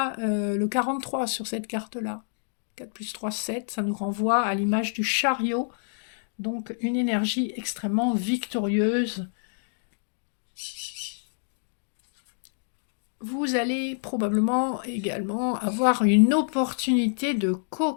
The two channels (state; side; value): silent; right; digital silence